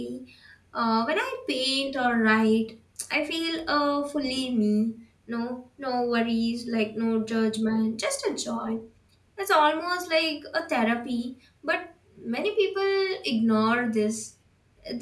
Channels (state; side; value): identical; both; correlation 1.00